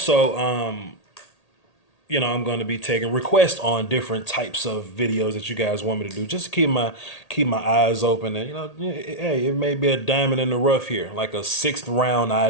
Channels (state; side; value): late; right; 1.8 ms